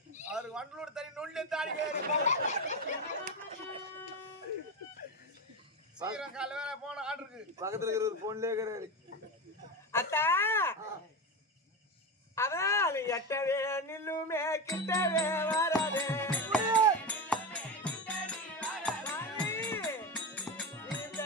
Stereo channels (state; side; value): normal; both; correlation 0.19